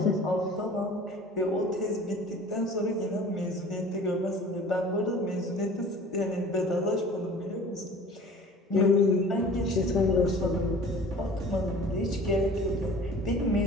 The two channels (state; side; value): normal; both; correlation 0.44